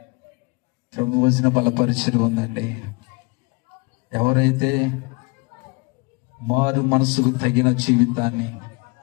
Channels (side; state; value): right; quieter; 28.6 dB